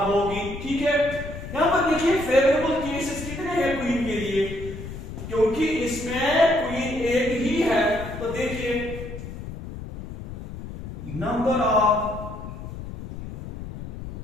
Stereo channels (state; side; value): noise; left; rumble, 10 dB below the sound